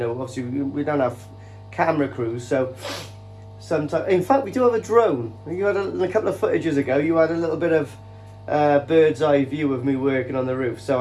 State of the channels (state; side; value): identical; both; correlation 1.00